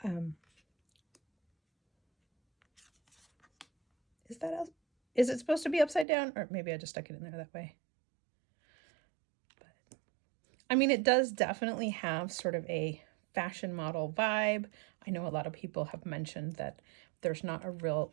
is that is it supposed to be upside down? Or maybe I just stuck it in there that way. But I mean, it does definitely have sort of a fashion model vibe. I know a lot of people have mentioned that there's not a real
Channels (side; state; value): left; drops out; at 6.1 s